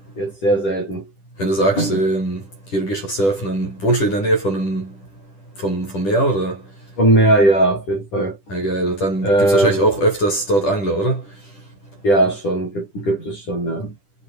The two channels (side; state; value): right; late; 10 ms